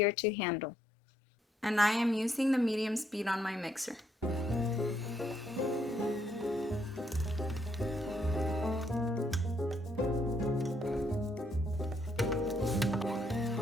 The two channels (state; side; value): normal; both; correlation 0.73